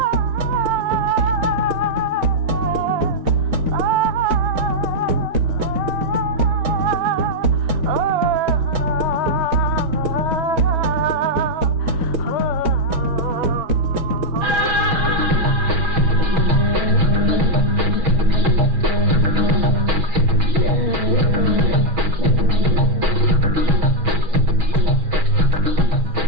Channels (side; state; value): left; late; 6.2 ms